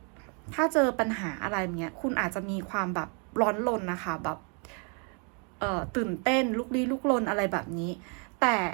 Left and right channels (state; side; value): quieter; left; 37.9 dB